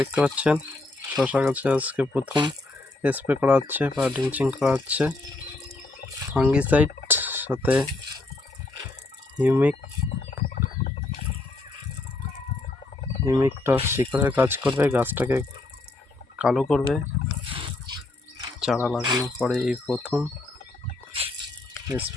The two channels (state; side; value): quieter; right; 3.1 dB